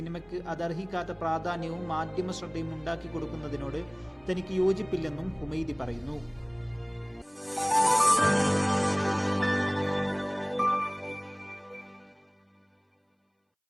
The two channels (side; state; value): both; identical; correlation 1.00